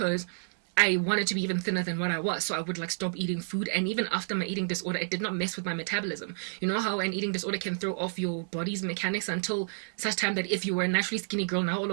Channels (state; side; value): silent; left; digital silence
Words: I wanted to be even thinner than what I was, so I would like stop eating food. And even after my eating disorder, it did not mess with my metabolism. You know how an eating disorder can throw off your body's mechanics until such time that if you were a naturally skinny girl, now all